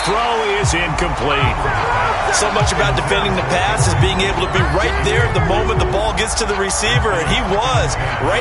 throw is incomplete. So much about defending the pass is being able to be right there at the moment the ball gets to the receiver, and he was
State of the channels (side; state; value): both; identical; correlation 1.00